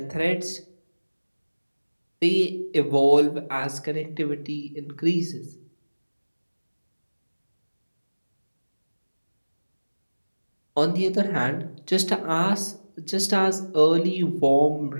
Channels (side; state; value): both; inverted; correlation -1.00